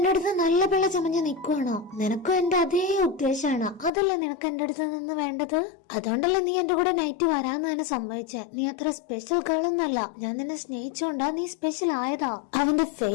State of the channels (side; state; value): right; drops out; at 3.9 s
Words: അടുത്ത് നല്ല പിള്ള ചമഞ്ഞ് നിൽക്കുവാണോ? നിനക്കും എന്റെ അതേ ഉദ്ദേശമാണ്. അതല്ലേ നിനക്ക് എന്റെ അടുത്ത് നിന്ന് വേണ്ടത്? അതുകൊണ്ടല്ലേ നീ എന്റെ കൂടെ നൈറ്റ് വരാന്ന് തന്നെ സമ്മതിച്ചേ. നീ അത്ര സ്പെഷ്യൽ ഗേൾ ഒന്നല്ല. ഞാൻ നിന്നെ സ്നേഹിച്ചോണ്ടാ നീ സ്പെഷ്യൽ ആയതാ. അവന്റെ